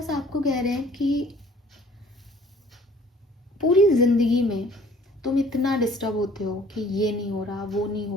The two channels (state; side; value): normal; both; correlation 0.54